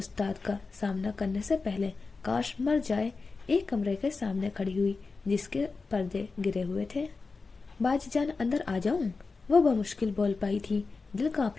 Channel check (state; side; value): quieter; right; 4.2 dB